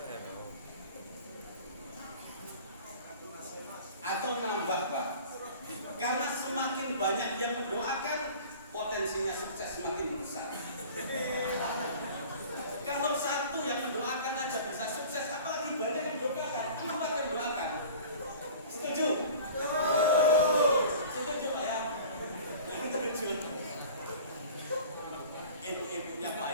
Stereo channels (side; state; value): both; inverted; correlation -0.42